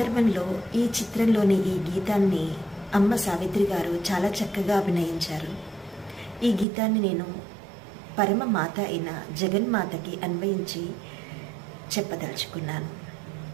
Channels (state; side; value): drops out; left; at 6.7 s